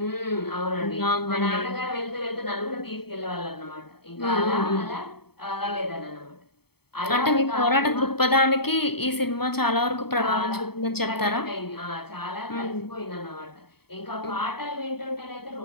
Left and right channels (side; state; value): right; late; 0.96 ms